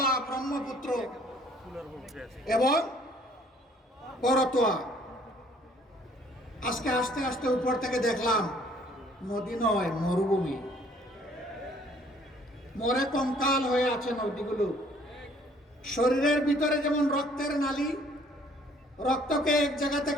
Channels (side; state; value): both; normal; correlation 0.59